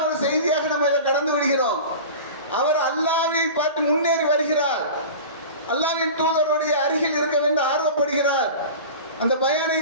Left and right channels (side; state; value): both; inverted; correlation -0.34